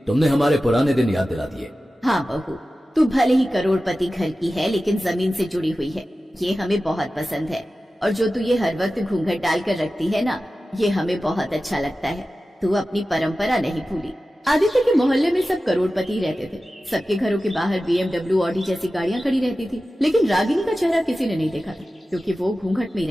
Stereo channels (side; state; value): both; normal; correlation 0.95